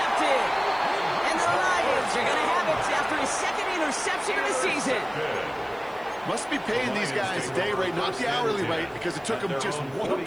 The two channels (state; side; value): noise; right; hiss, 30 dB below the sound